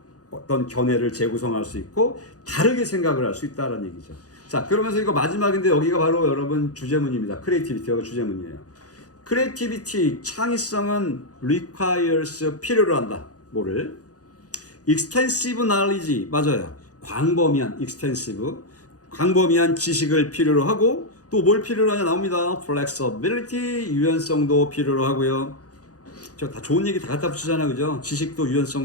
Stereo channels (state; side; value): late; right; 0.67 ms